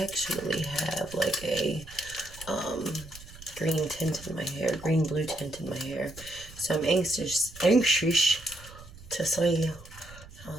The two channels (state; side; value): noise; right; rumble, 18 dB below the sound